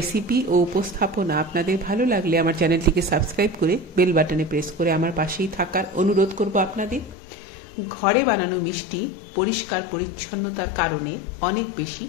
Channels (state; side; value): drops out; right; at 7.2 s